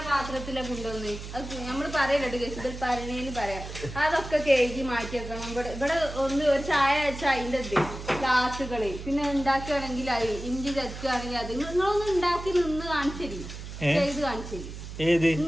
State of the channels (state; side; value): noise; right; hum, 10 dB below the sound